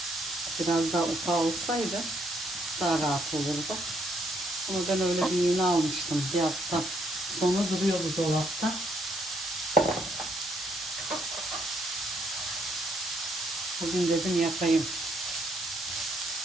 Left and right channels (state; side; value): normal; both; correlation 0.71